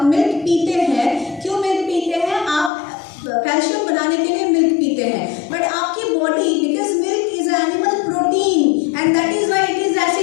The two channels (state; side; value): drops out; right; at 2.7 s